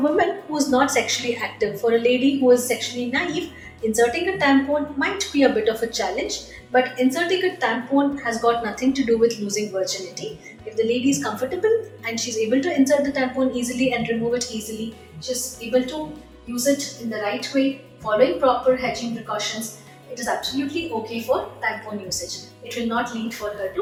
who is not sexually active, for a lady who is sexually naive, inserting a tampon might be a bit of a challenge, but inserting a tampon has got nothing to do with losing virginity. If the lady is comfortable and she's able to insert the tampon easily and remove it easily, she's able to use it in the right way, following proper hygiene precautions, it is absolutely okay for tampon usage. It will not lead for her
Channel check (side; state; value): both; identical; correlation 1.00